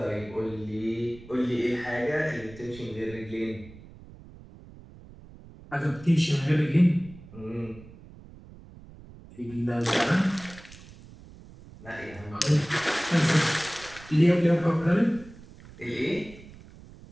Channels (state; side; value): noise; right; rumble, 19 dB below the sound